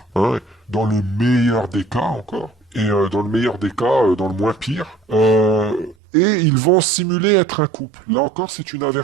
hein, dans le meilleur des cas encore, et dans le meilleur des cas, dans le moins pire. Et ils vont simuler être un couple. Là encore, c'est une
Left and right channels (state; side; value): drops out; left; at 6.0 s